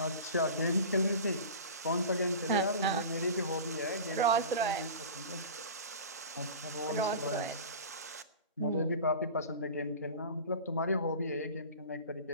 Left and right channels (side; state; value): both; inverted; correlation -0.35